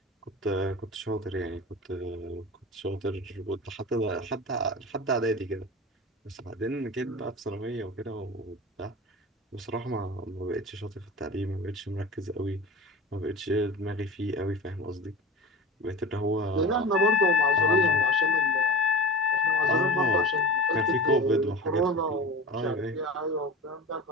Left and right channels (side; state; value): both; normal; correlation 0.33